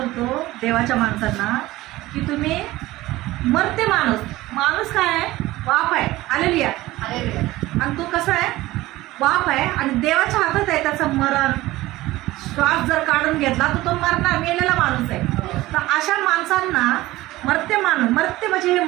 देवाच्या माणसांना की तुम्ही मर्त्य माणूस काय आहे? वाप आहे. हालेलुया. आणि तो कसा आहे? वाप आहे आणि देवाच्या हातात आहे त्याचं मरण. श्वास जर काढून घेतला तर तो मरणार, मेलेला माणूस आहे. तर अशा माणसांना मर्त्य म्हणजे हे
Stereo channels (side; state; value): left; quieter; 17.8 dB